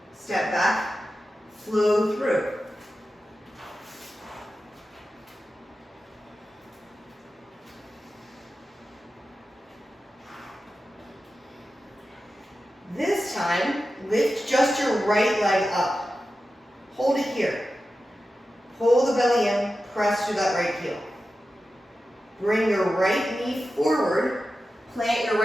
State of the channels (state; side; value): normal; both; correlation 0.92